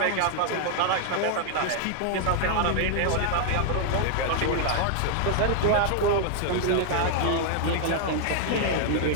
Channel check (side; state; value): both; different; correlation 0.00